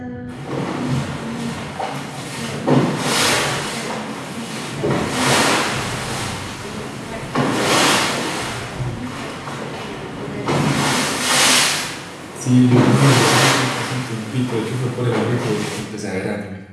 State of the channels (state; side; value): identical; both; correlation 1.00